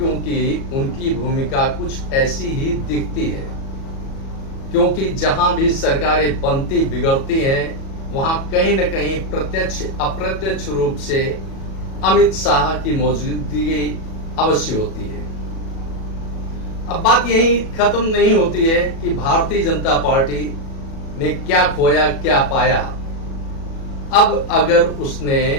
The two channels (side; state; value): right; late; 37 ms